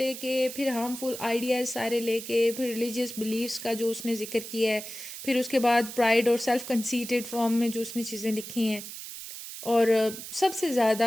फिर हार्मफुल आइडियाज़ सारे लेके, फिर रिलीजियस बिलीव्स का जो उसने जिक्र किया है, फिर उसके बाद प्राइड और सेल्फ कंसीटेड फॉर्म में जो उसने चीज़ें लिखी हैं, और सबसे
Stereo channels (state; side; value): noise; right; hiss, 10 dB below the sound